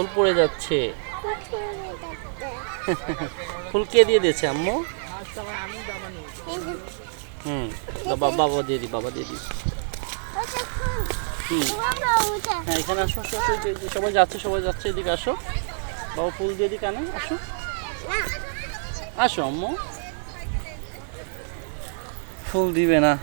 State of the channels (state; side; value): silent; left; digital silence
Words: পড়ে যাচ্ছে। ফুল কে দিয়ে দিয়েছে আম্মু? বাবা দিয়ে দি, বাবা দিয়ে দি। হ্যাঁ এখানে আসো, আসো, আসো, সবাই যাচ্ছে, সবাই যাচ্ছে, এদিকে আসো। বাবা ফুল দিয়ে দি কানে, আসো আসো আম্মু। ফুল দিবে না।